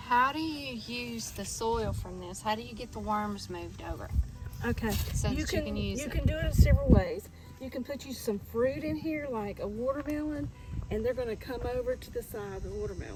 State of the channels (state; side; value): identical; both; correlation 1.00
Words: do you use the soil from this? How do you get the worms moved over Okay. so that you can use you it? can do it in several ways. You can put you some fruit in here, like a watermelon, and they're going to come over to the side of the